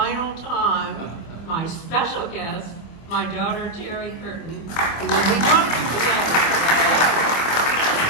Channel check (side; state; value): right; late; 25 ms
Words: time, my special guest, my daughter, Terry Curtin, who will be talking today.